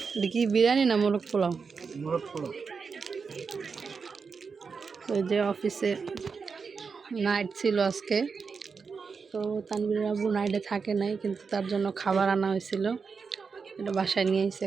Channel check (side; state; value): left; quieter; 5.3 dB